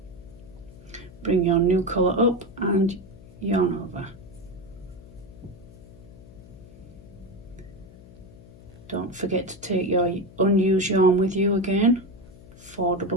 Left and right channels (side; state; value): left; noise; hum, 20 dB below the sound